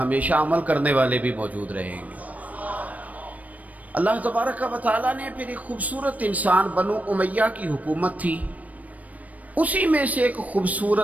عمل کرنے والے بھی موجود رہیں گے۔ اللہ تبارک و تعالیٰ نے پھر ایک خوبصورت انسان، بنو امیہ کی حکومت تھی، اسی میں سے ایک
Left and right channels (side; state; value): left; late; 0.071 ms